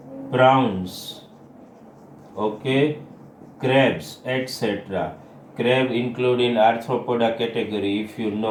prawns, okay, crabs, etc. Crab include in arthropoda category, if you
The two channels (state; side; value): identical; both; correlation 1.00